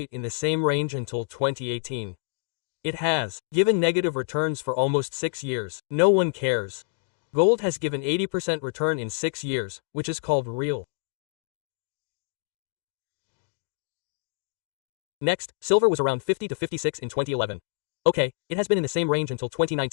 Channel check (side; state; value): right; silent; digital silence